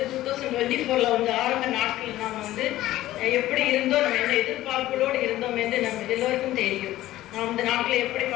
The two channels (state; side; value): quieter; right; 15.1 dB